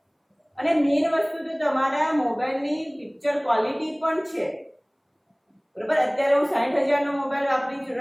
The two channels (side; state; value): both; identical; correlation 1.00